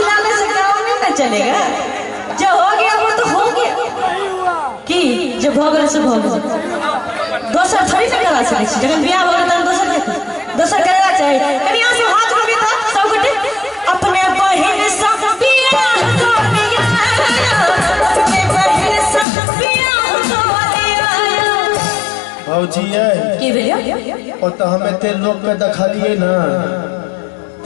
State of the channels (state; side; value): drops out; right; at 19.2 s